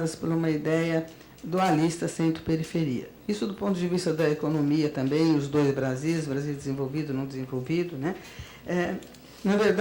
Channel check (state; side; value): identical; both; correlation 1.00